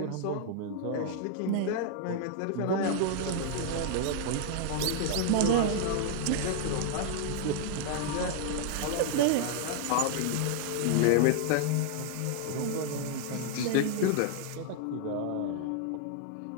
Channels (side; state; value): both; different; correlation 0.00